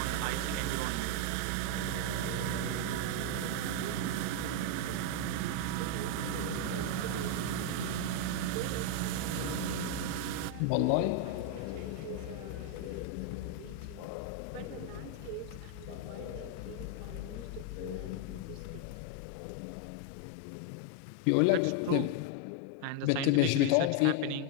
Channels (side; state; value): both; different; correlation 0.00